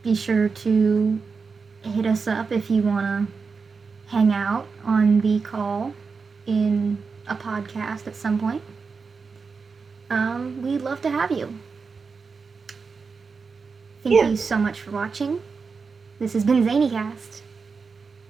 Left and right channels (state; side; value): quieter; left; 4.9 dB